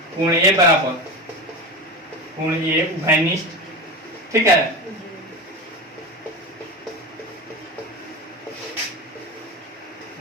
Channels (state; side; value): normal; both; correlation 0.24